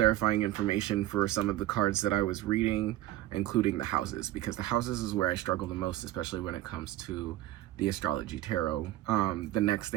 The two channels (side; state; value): left; quieter; 14.7 dB